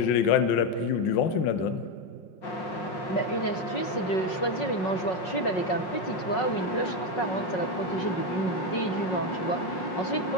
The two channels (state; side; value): late; right; 5.4 ms